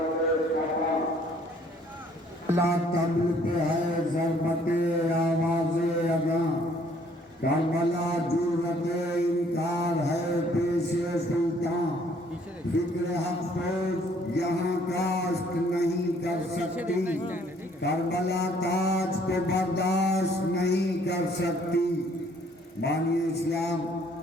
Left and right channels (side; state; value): both; normal; correlation 0.62